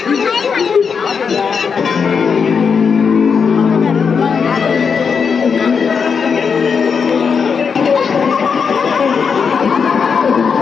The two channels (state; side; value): quieter; right; 6.1 dB